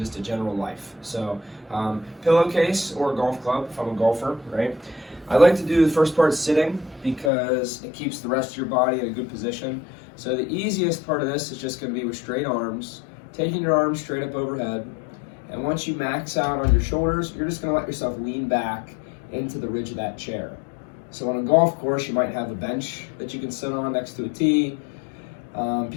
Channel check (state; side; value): drops out; right; at 7.3 s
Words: to general life. So pillowcase or golf club if I'm a golfer, right? I like to do the first part sitting because it keeps the rest of your body in a good position. So the easiest part of this is just going to be with straight arms, taking your arms straight up overhead. And once you max out on your shoulders, you're just going to let yourself lean back into the ridge of that chair. So on a golf course, you might have a bench that you can sit on next to a tee.